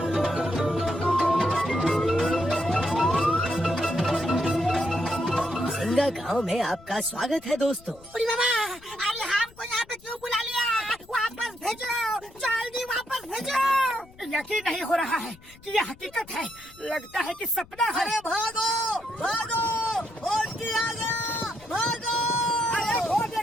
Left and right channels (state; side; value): noise; left; rumble, 24 dB below the sound